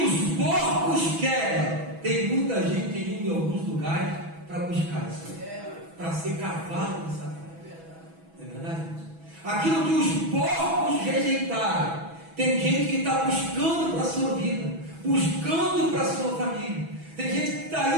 os porcos querem, tem muita gente indo em alguns lugares para buscar isso, para ser cavalo de Satanás. Não é verdade, irmãos? Aquilo que os porcos rejeitaram, tem gente que está buscando para a sua vida, buscando para a sua família. Tem gente que está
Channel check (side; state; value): left; late; 6.1 ms